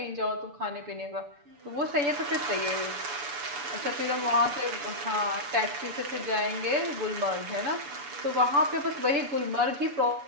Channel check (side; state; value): left; late; 6.9 ms